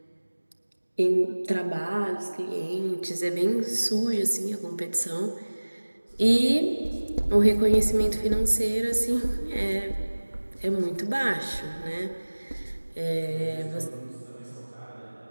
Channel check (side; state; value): both; inverted; correlation -1.00